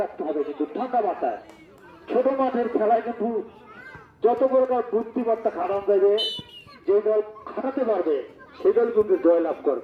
রাখতে হবে। কিন্তু ঠান্ডা মাথায় ছোট মাঠের খেলায় কিন্তু যত প্রকার বুদ্ধিমত্তা খাটানো যাবে, যে দল খাটাতে পারবে সেই দল কিন্তু জয়লাভ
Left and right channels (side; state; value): both; identical; correlation 1.00